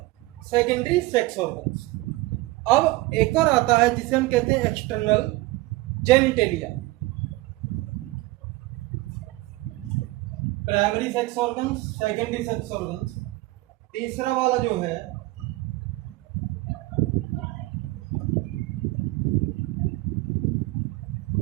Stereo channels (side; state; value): left; quieter; 20.4 dB